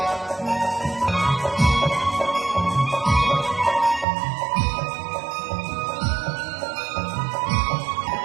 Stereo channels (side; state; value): left; drops out; at 4.0 s